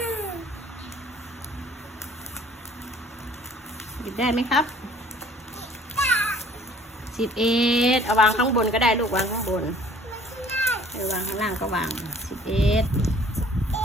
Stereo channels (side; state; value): both; normal; correlation 0.55